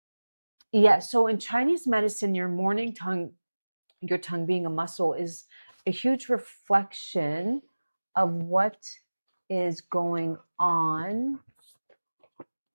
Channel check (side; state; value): both; inverted; correlation -1.00